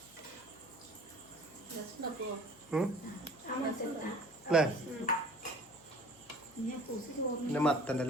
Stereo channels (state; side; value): noise; left; hum, 26 dB below the sound